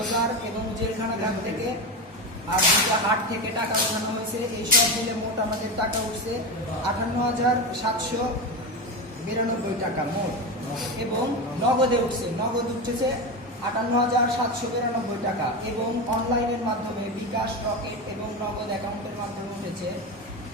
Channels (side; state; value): both; normal; correlation 0.19